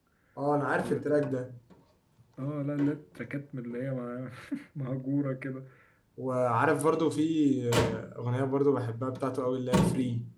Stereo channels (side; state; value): both; identical; correlation 1.00